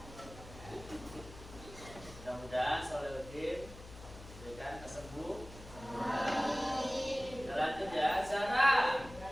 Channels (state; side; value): noise; left; hum, 16 dB below the sound